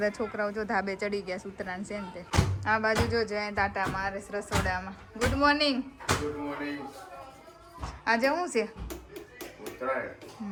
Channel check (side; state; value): both; identical; correlation 1.00